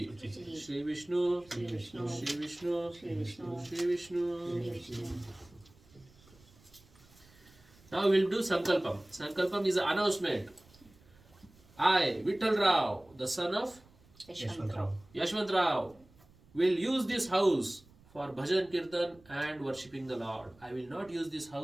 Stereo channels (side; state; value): right; noise; rumble, 27 dB below the sound